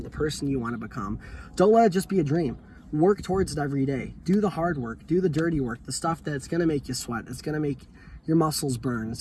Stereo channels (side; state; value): both; identical; correlation 1.00